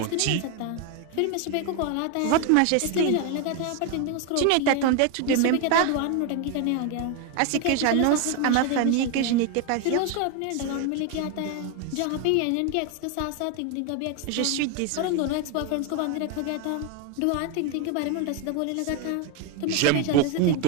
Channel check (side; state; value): both; different; correlation 0.01